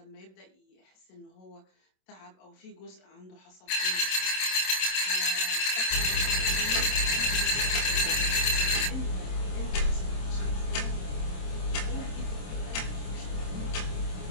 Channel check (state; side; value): late; right; 27 ms